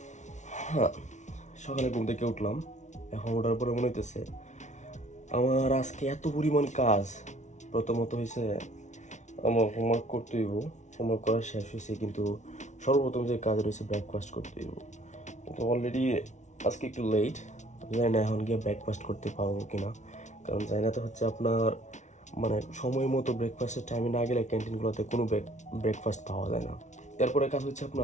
হ্যাঁ, সকালে ঘুম থেকে উঠলাম। এখন ওঠার পরে মনে হইতেছে আমার আজকে এত পরিমাণ কাজ। প্রথমত হয়েছে আমার হোমওয়ার্ক করতে হইব, হোমওয়ার্ক করা শেষ হয়েছে, কিন্তু সর্বপ্রথম যে কাজ রয়েছে ব্রেকফাস্ট করতে হইব। কিন্তু অলরেডি আজকে একটু লেট, জানি না এখন গিয়ে ব্রেকফাস্ট করতে পারবো কিনা, কারণ জানি না তো হচ্ছে আপনার মানে সময় মতো ব্রেকফাস্টের টাইমে না গেলে ক্যান্টিনগুলোতে কোনো ব্রেকফাস্ট পাওয়া যায় না। এরপরে কাজ হচ্ছে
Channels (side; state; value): right; late; 0.34 ms